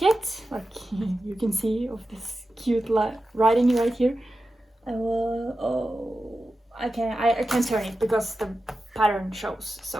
like you can see, of this cute writing right here. I can't turn it because the pattern shows.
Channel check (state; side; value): normal; both; correlation 0.92